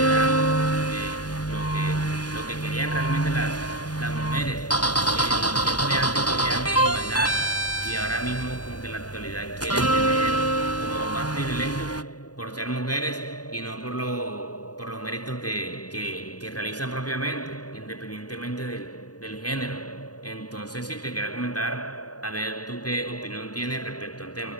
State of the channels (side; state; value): right; late; 0.69 ms